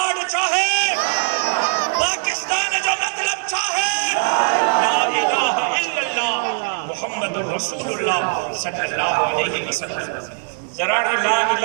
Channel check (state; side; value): silent; left; digital silence